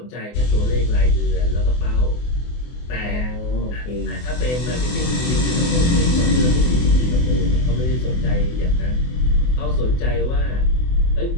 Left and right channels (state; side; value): late; right; 24 ms